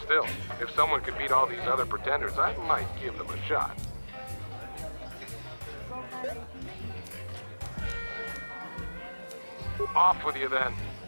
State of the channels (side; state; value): both; inverted; correlation -1.00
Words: Still, if someone could beat all these other pretenders, I might give them a shot. Off with you then.